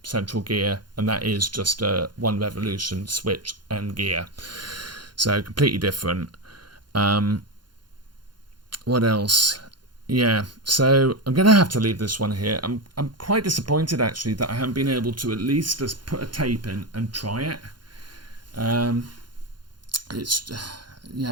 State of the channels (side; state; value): left; late; 0.71 ms